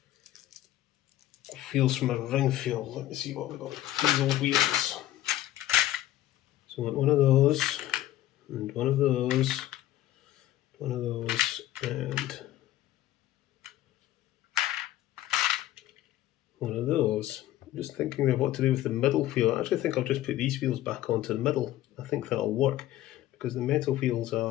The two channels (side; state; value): right; quieter; 14.1 dB